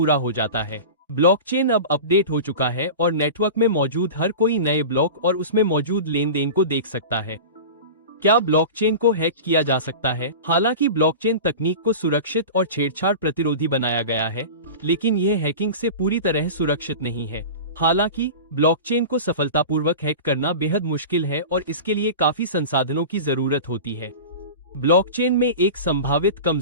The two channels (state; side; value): inverted; both; correlation -0.32